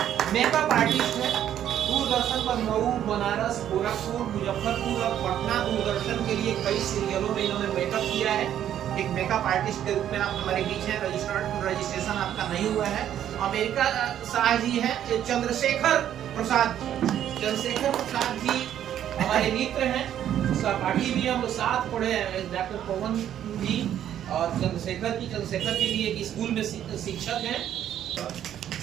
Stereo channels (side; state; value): left; quieter; 10.6 dB